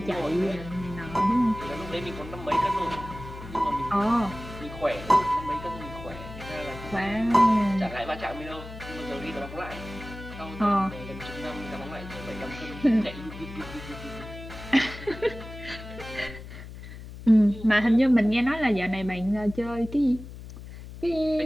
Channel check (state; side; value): noise; left; hum, 13 dB below the sound